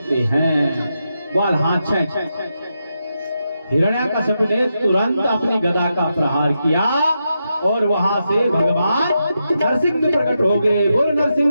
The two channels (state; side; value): inverted; both; correlation -0.86